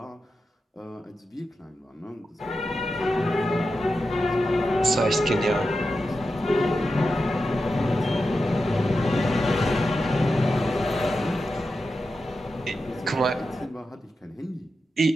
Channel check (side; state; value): both; normal; correlation 0.90